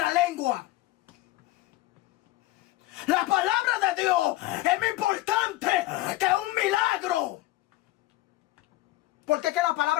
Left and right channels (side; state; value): right; quieter; 17.3 dB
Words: lengua. La palabra de Dios es más importante que un milagro. Porque es que la